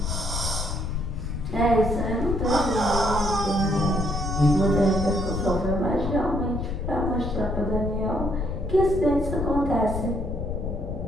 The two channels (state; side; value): noise; left; rumble, 3 dB below the sound